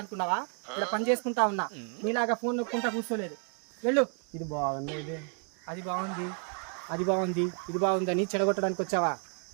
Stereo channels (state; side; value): quieter; left; 39.9 dB